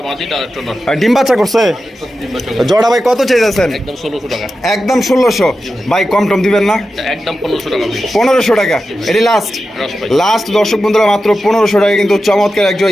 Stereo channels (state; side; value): normal; both; correlation 0.91